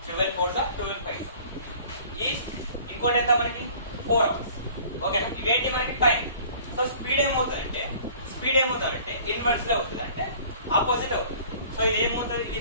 12 4 12 5 ఈ ఇంకోటి ఎంత మనకి 4 hours. ఓకేనా. ఇవేంటి మనకి టైం. సో స్పీడ్ ఏమవుతుందంటే ఇన్వర్స్ లో అవుతుంది అంటే ఆపోజిట్ అవుతుంది. సో ఇది ఏమవుతుంది ఇది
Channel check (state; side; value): inverted; both; correlation -0.50